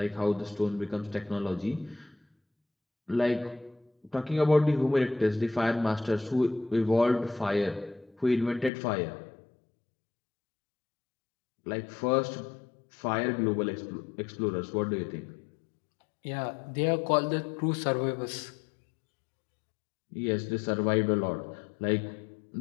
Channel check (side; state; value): right; drops out; at 8.7 s